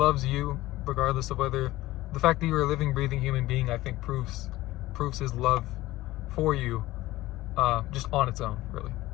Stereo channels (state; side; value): quieter; right; 17.3 dB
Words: you, regardless of whether the fact that you're a living, breathing human being, I think proves His love for you, just on its own, really.